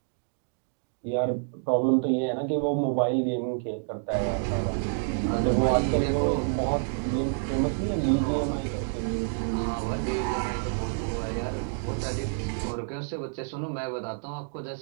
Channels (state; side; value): silent; left; digital silence